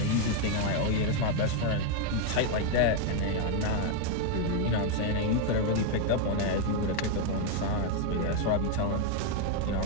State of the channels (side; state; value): both; different; correlation 0.01